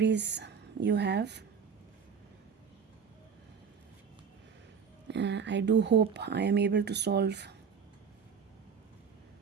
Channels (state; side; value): quieter; left; 6.6 dB